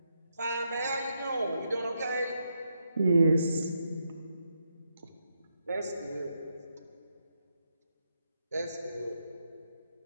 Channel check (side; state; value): both; inverted; correlation -0.81